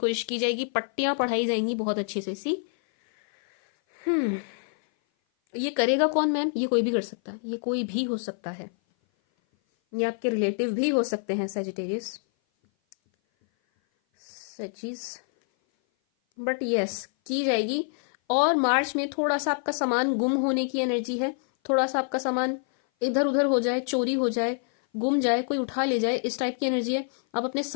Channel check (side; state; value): right; silent; 57 dB below the other